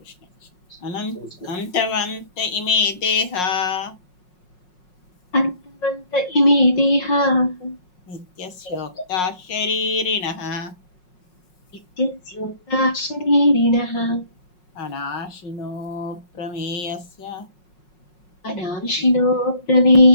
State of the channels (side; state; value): right; late; 5.5 ms